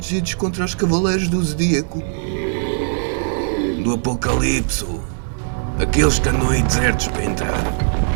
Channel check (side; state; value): left; silent; digital silence